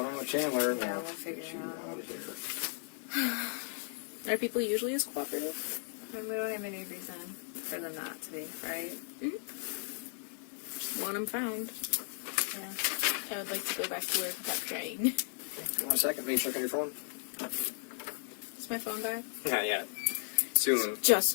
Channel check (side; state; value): right; silent; 54 dB below the other